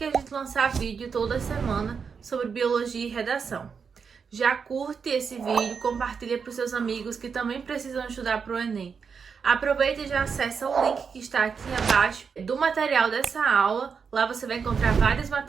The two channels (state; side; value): quieter; left; 6.0 dB